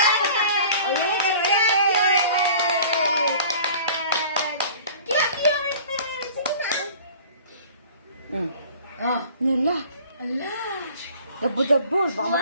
Nila. Ala. Dabo-dabo. Baka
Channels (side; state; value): both; inverted; correlation -0.46